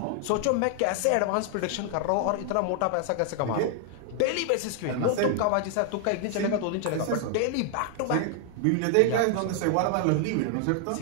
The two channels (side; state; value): both; different; correlation 0.00